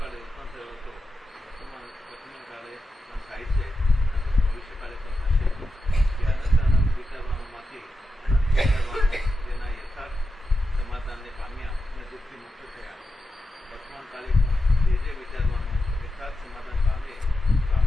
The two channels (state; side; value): normal; both; correlation 0.89